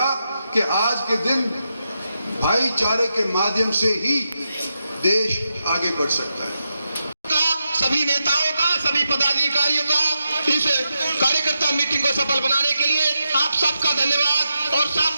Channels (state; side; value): inverted; both; correlation -0.86